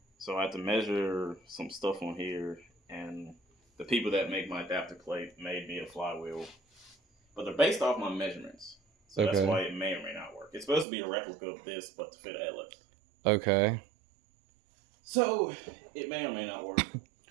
So I had to measure some stuff on here, and the people that make my adapter plate made me a flywheel. But they're based off my measurements. So Okay. that's why it may or may not work. It's supposed to be a replica of this, but to fit a LS. Okay. So it may or may not work,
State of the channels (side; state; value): left; drops out; at 10.9 s